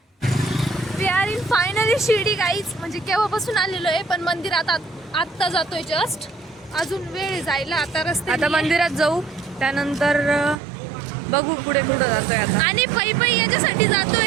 We are in finally Shirdi guys. म्हणजे केव्हापासून आलेलो आहे, पण मंदिरात आत्ता जातोय जस्ट. अजून वेळ जायला, आता रस्ते. आता मंदिरात जाऊ, त्यानंतर बघू पुढे कुठं जातोय आता. आणि पै याच्यासाठी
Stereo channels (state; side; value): drops out; left; at 10.6 s